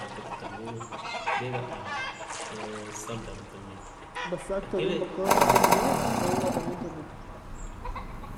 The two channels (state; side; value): identical; both; correlation 1.00